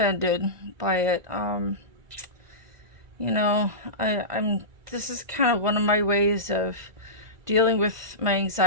by it. This is kind of one of my ways of dealing with my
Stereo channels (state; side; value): late; left; 2.0 ms